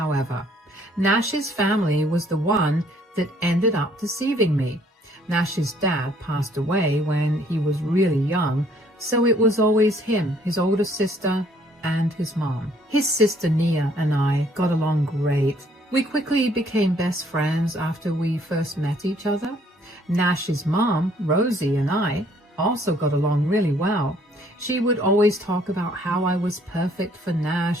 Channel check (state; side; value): normal; both; correlation 0.62